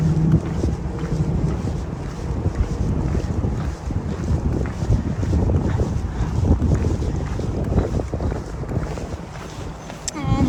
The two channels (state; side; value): identical; both; correlation 1.00